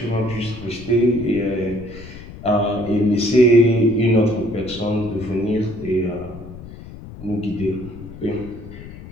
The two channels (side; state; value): left; noise; rumble, 15 dB below the sound